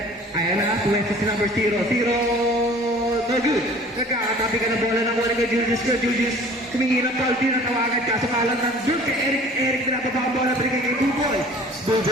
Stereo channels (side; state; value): both; normal; correlation 0.47